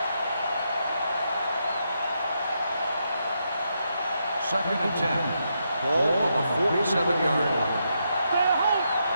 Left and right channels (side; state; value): both; inverted; correlation -0.81